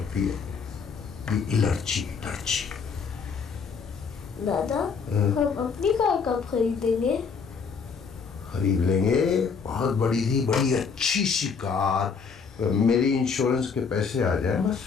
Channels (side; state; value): right; quieter; 5.7 dB